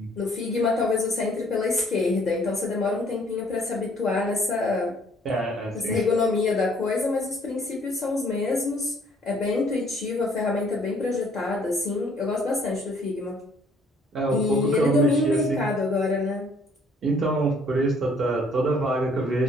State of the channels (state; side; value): normal; both; correlation 0.61